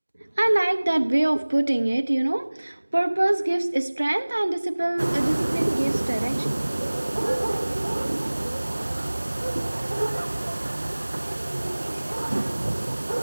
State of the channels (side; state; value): both; inverted; correlation -1.00